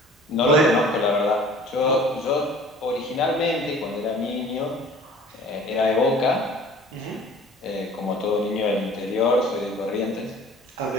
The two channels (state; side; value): normal; both; correlation 0.48